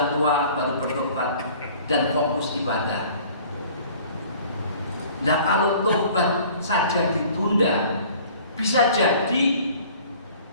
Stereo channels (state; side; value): inverted; both; correlation -0.50